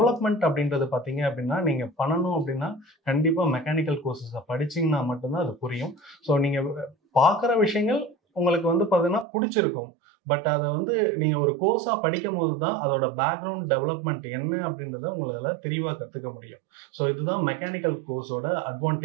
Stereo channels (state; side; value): drops out; left; at 9.2 s